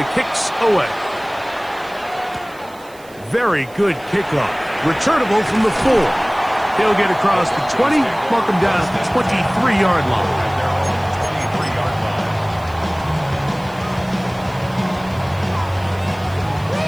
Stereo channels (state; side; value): noise; right; hiss, 25 dB below the sound